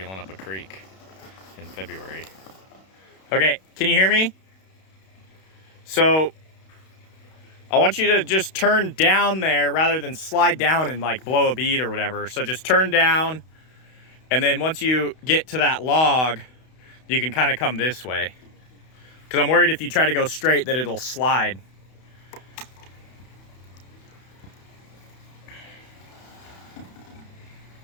up a creek in February. Okay, can you hear me? So I want you to just turn down there rather than slide down and like blow a bead or whatever. So just turn down, and then once you get to that log, you can kind of come this way. Because I'm worried if you try to go straight that it'll slide.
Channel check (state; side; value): late; right; 32 ms